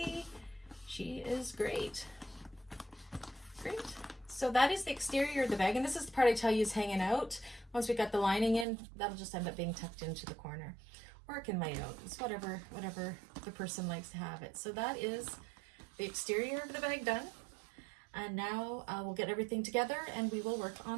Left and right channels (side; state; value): left; drops out; at 8.7 s